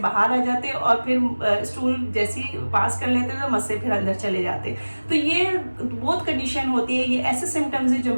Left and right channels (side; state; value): both; inverted; correlation -1.00